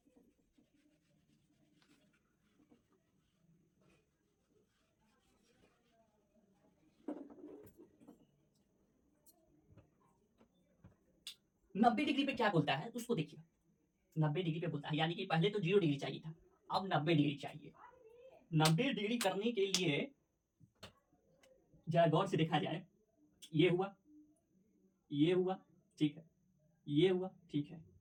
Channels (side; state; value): both; identical; correlation 1.00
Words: नब्बे डिग्री पे क्या बोलता है उसको देखिए, 90 डिग्री पे बोलता है, यानी कि पहले तो 0 डिग्री चाहिए था, अब 90 डिग्री चाहिए। 90 डिग्री करने के लिए जरा गौर से देखा जाए, ये हुआ, ये हुआ, ठीक है, ये हुआ, ठीक है।